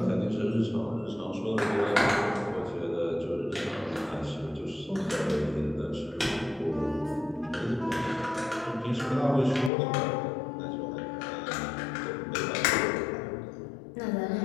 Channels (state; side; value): drops out; right; at 9.7 s